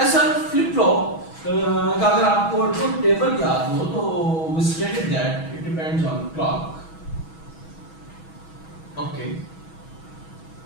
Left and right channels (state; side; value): late; right; 6.2 ms